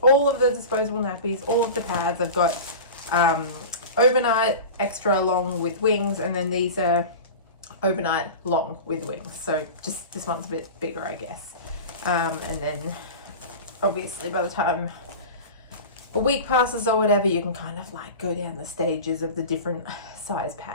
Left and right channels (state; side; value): inverted; both; correlation -0.32